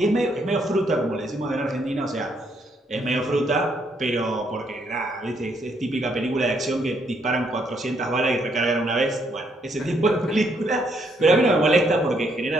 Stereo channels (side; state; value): both; normal; correlation 0.72